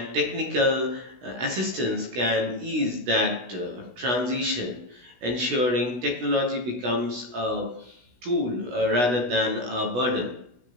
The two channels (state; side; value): late; left; 16 ms